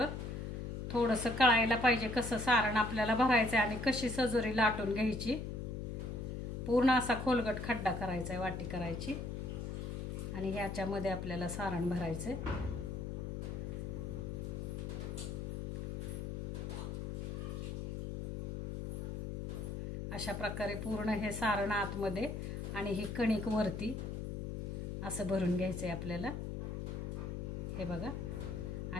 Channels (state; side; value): noise; left; hum, 4 dB below the sound